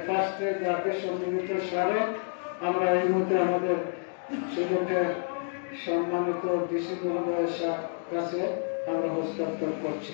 ফার্স্টের দাবি সম্মিলিত স্মারক আমরা এই মুহূর্তে আমাদের সুযোগের সম্মানিত ডিসি মহোদয়ের কাছে আমরা হস্তান্তর করছি।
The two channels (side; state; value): right; silent; 59 dB below the other